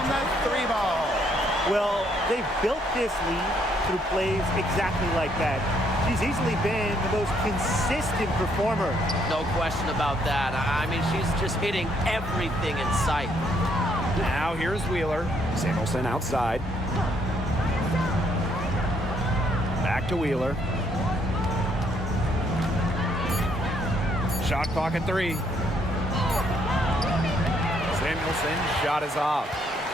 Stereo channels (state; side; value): normal; both; correlation 0.70